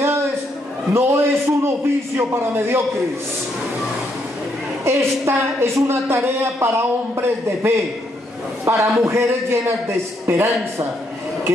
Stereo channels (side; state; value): both; normal; correlation 0.75